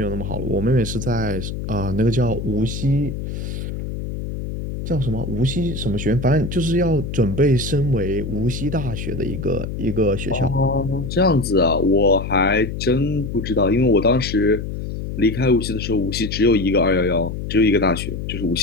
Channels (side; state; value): left; noise; hum, 6 dB below the sound